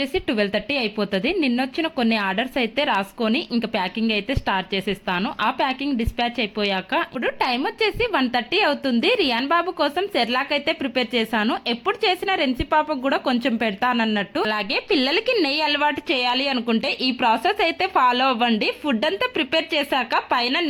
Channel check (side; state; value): both; identical; correlation 1.00